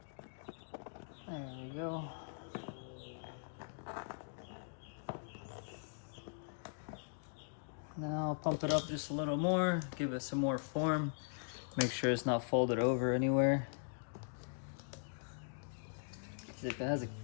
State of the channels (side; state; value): right; silent; digital silence